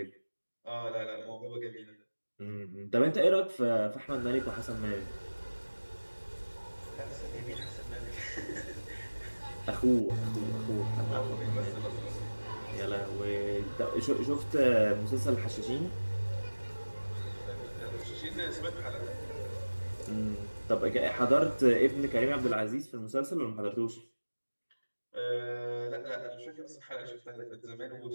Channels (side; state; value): both; inverted; correlation -1.00